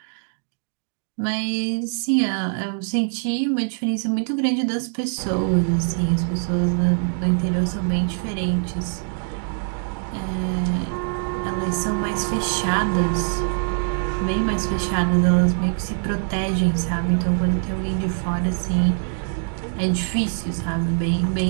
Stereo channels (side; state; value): left; silent; 63 dB below the other